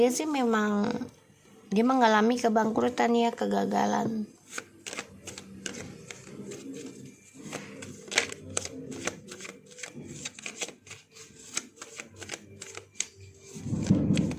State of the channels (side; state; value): both; identical; correlation 1.00